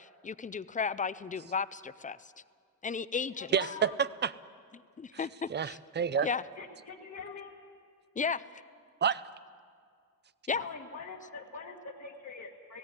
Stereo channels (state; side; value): normal; both; correlation -0.09